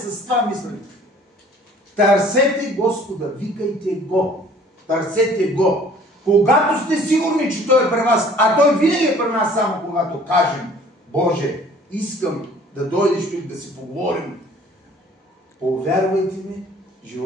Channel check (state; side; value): normal; both; correlation 0.53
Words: това мислене. Търсете Господа, викайте Го. Търсете Го. Когато сте сигурни, че Той е при вас, а Той винаги е при нас само когато кажем, Боже, искам да дойдеш тук да си поговорим. Повярвайте ми,